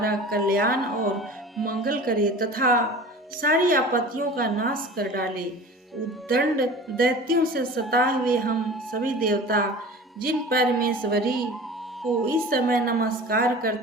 कल्याण और मंगल करे तथा सारी आपत्तियों का नाश कर डाले। उद्दंड दैत्यों से सताए हुए हम सभी देवता जिन परमेश्वरी को इस समय नमस्कार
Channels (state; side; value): normal; both; correlation 0.39